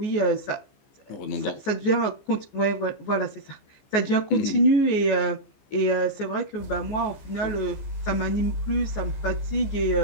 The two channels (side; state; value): right; late; 15 ms